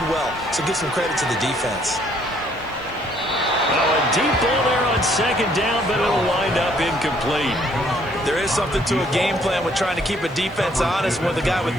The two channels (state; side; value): noise; right; hiss, 29 dB below the sound